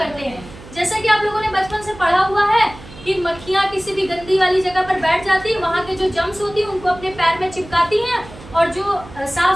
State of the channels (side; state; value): right; noise; hum, 18 dB below the sound